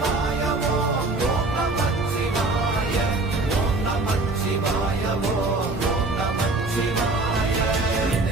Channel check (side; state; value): left; quieter; 3.2 dB